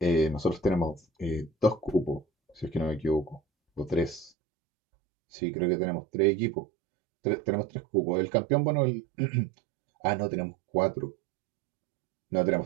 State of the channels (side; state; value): left; drops out; at 4.3 s